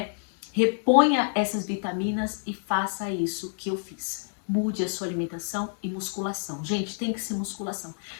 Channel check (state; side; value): silent; right; digital silence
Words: Reponha essas vitaminas e faça isso que eu fiz. Mude a sua alimentação e musculação. Gente, tem que ser musculação.